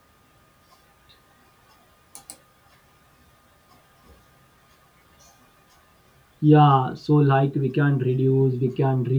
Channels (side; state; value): both; identical; correlation 1.00